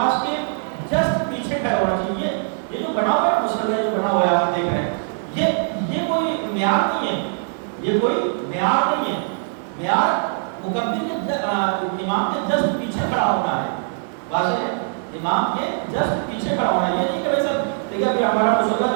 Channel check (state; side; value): silent; left; digital silence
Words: کے جسٹ پیچھے کھڑا ہونا چاہیے. یہ جو بنا ہوا ہے مسئلہ, جو بنا ہوا ہے آپ دیکھ رہے ہیں, یہ کوئی معیار نہیں ہے, یہ کوئی معیار نہیں ہے. معیار مکمل کے امام کے جسٹ پیچھے کھڑا ہونا ہے. واضح ہے, امام کے جسٹ پیچھے کھڑا ہونا ہے. یہ نہیں کہ بھائی سب دیکھیے ابھی ہمارا مسئلہ